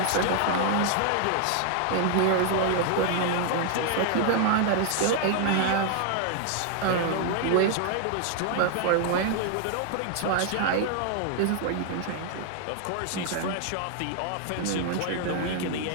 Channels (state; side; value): different; both; correlation 0.00